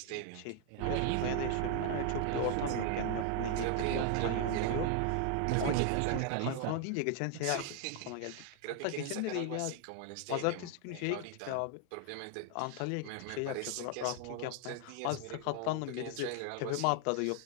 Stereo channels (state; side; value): different; both; correlation 0.00